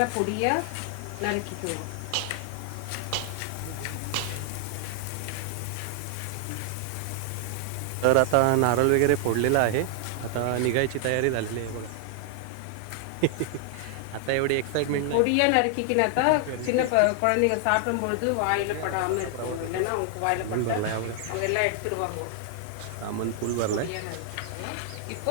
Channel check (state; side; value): different; both; correlation 0.00